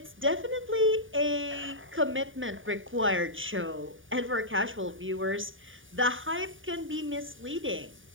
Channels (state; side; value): late; left; 0.57 ms